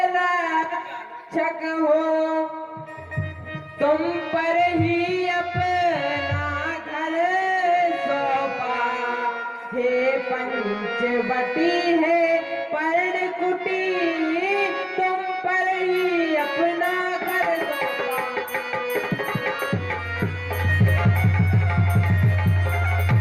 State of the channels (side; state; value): both; identical; correlation 1.00